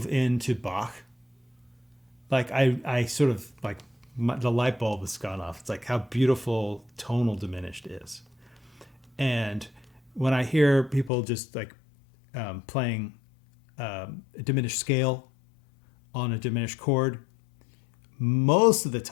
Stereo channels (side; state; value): right; drops out; at 11.1 s